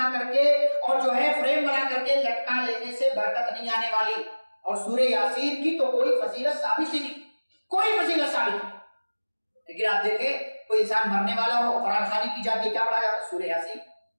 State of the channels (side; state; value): both; inverted; correlation -1.00